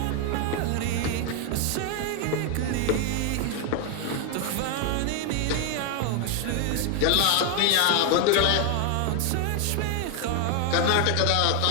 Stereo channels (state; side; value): different; both; correlation 0.01